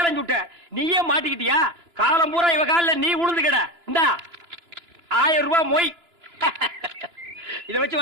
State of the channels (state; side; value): late; left; 2.9 ms